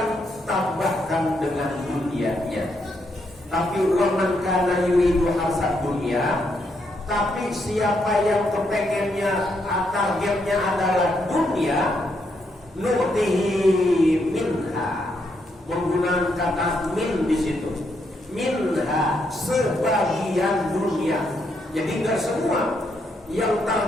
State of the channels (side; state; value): both; normal; correlation 0.77